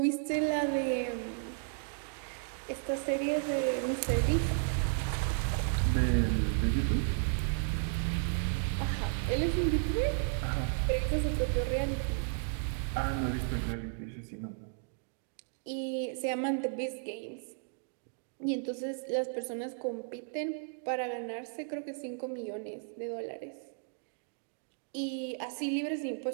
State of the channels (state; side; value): silent; left; digital silence